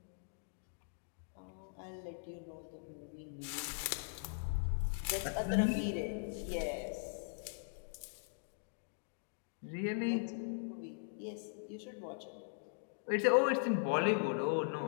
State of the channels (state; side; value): silent; right; digital silence